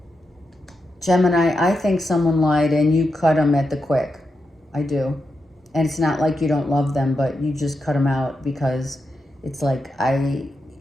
Gemini, I think someone lied and you cut them at the quick. I do. And it's not like you don't love them, but you just cut them out because it's like I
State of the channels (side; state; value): both; normal; correlation 0.86